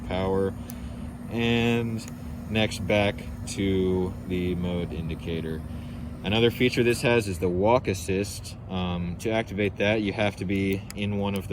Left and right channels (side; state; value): both; identical; correlation 1.00